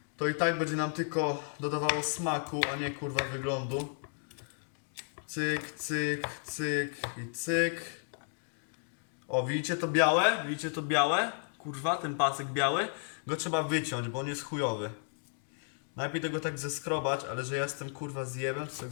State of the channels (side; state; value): right; silent; digital silence